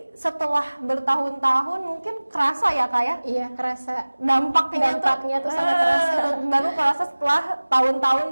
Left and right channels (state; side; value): inverted; both; correlation -1.00